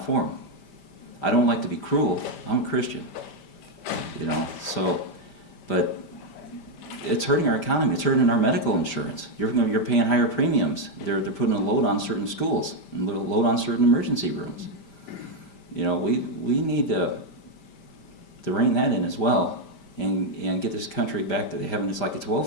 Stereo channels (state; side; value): late; right; 5.1 ms